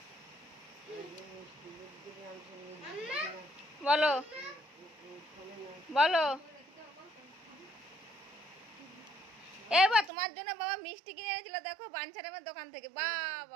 বলো বলো। এবার তোমার জন্য বাবা মিষ্টি কিনে এনেছিল, দেখো বাঞ্ছারামের দোকান থেকে। বাহ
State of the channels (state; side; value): drops out; left; at 10.1 s